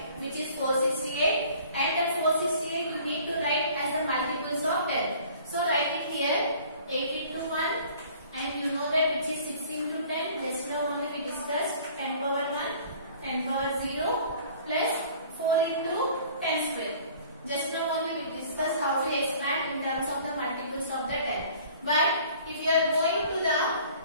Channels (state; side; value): inverted; both; correlation -0.51